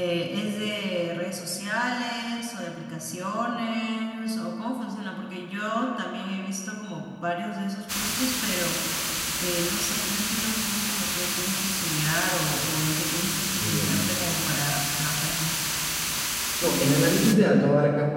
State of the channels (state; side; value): identical; both; correlation 1.00